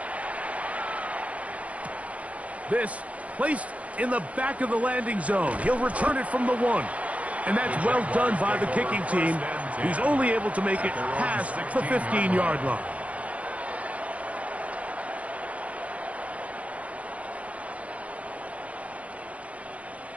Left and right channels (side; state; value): left; late; 0.066 ms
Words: This placed in the back of the landing zone. He'll return it from the 1. And that's well done by the kicking team, who's only able to make it past the 15-yard line.